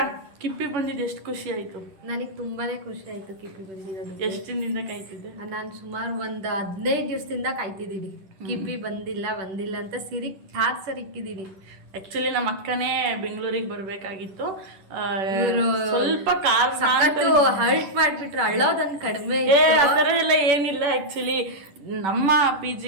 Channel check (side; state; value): left; late; 10 ms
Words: ಕಿಪ್ಪಿ ಬಂದಿದ್ದು ಎಷ್ಟು ಖುಷಿ ಆಯ್ತು? ನನಗೆ ತುಂಬಾನೇ ಖುಷಿ ಆಯ್ತು ಕಿಪ್ಪಿ ಬಂದಿರೋದು. ಎಷ್ಟು ದಿನದಿಂದ ಕಾಯ್ತಿದ್ದೆ ನಾನು? ಸುಮಾರು ಒಂದು 15 ದಿವಸದಿಂದ ಕಾಯ್ತಿದ್ದೀನಿ. ಕಿಪ್ಪಿ ಬಂದಿಲ್ಲ ಅಂತ ಸಿರಿ ಟಾರ್ಚರ್ ಇಕ್ಕಿದ್ದೀನಿ. ಆಕ್ಚುಲಿ ನಮ್ಮ ಅಕ್ಕನೇ ಬೆಂಗಳೂರಿಗೆ ಬರ್ಬೇಕಾಗಿತ್ತು. ಸ್ವಲ್ಪ ಹರ್ಟ್ ಮಾಡ್ಬಿಟ್ರು, ಅಳ್ಳೋದನ್ನ ಕಡಿಮೆ. ಆ ಥರ ಎಲ್ಲ ಏನಿಲ್ಲ. ಆಕ್ಚುಲಿ ನಮ್ಮ ಪಿ